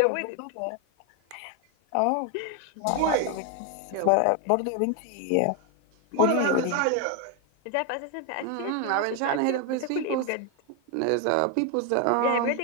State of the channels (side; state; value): both; different; correlation 0.01